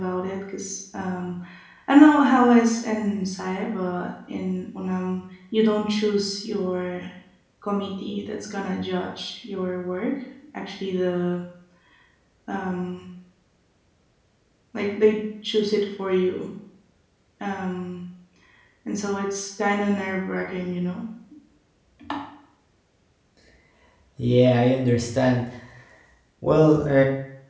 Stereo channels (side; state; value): both; identical; correlation 1.00